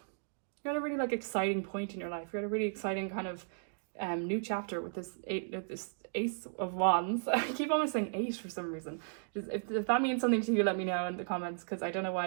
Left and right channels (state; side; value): silent; left; digital silence